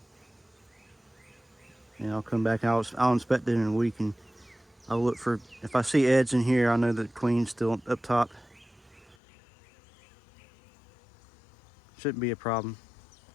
I'll come back. I'll inspect it in a week, and I'll look for, if I see eds in here, I know that the queen's still up top. Shouldn't be a problem.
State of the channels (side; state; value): right; drops out; at 9.2 s